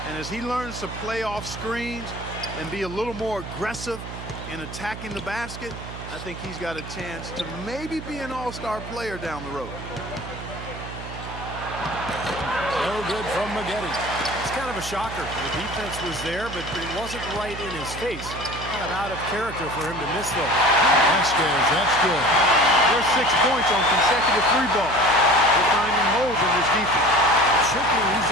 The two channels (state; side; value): noise; right; hum, 10 dB below the sound